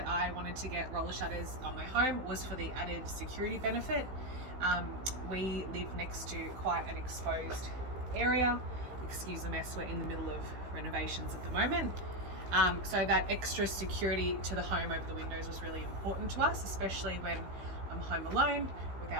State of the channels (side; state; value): left; late; 16 ms